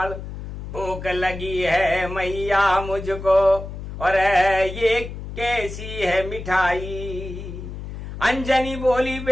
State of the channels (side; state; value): left; noise; hum, 9 dB below the sound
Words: भूख लगी है मैया मुझको, और ये कैसी है मिठाई। अंजनी बोली